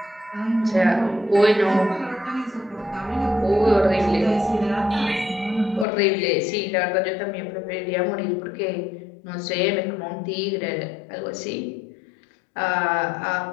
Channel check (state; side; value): drops out; right; at 5.9 s